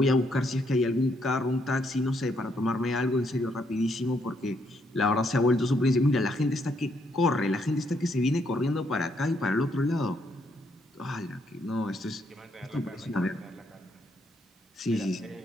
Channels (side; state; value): both; normal; correlation 0.74